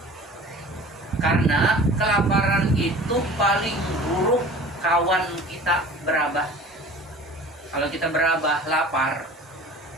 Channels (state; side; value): normal; both; correlation 0.43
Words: Karena kelaparan itu paling buruk kawan kita berabah. Kalau kita berabah, lapar.